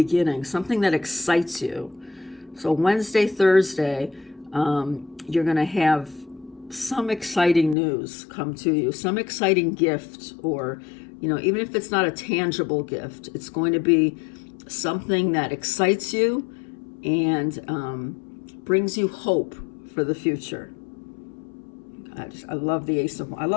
something that excites you. So Wednesday, Thursday, you're going to have some exciting news come to you, some exciting gift, or, even if it's not a tangible gift, it's going to be something that excites you and brings you hope for the future. I love the I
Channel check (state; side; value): drops out; right; at 7.8 s